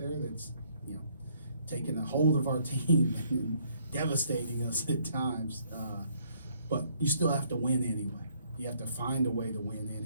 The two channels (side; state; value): both; inverted; correlation -0.67